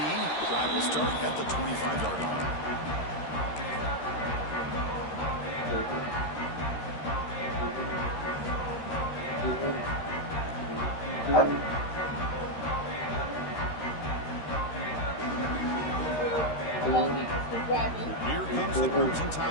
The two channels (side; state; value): right; late; 13 ms